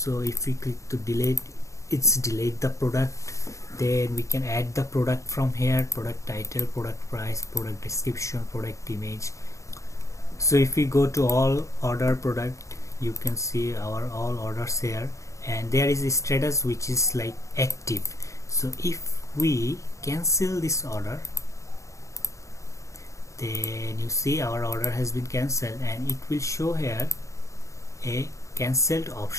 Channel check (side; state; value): right; late; 0.15 ms